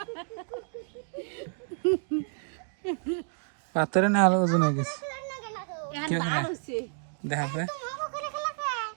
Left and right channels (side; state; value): left; silent; digital silence